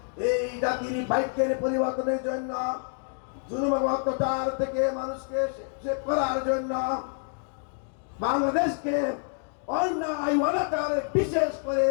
এই জাতির ভাগ্যের পরিবর্তনের জন্য, জুলুম এবং অত্যাচার থেকে মানুষকে সেভ করার জন্য, বাংলাদেশকে অন্যায় অনাচার বিশেষ করে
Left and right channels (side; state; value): right; silent; 60 dB below the other